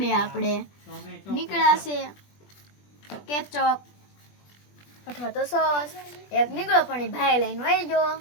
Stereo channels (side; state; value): right; late; 20 ms